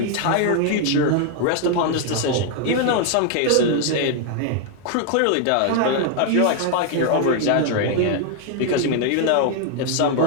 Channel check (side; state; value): both; different; correlation 0.00